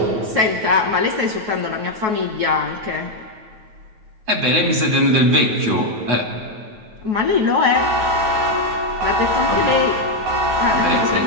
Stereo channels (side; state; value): left; late; 9.2 ms